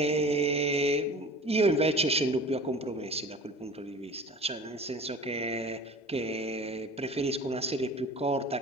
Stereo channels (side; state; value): both; normal; correlation 0.41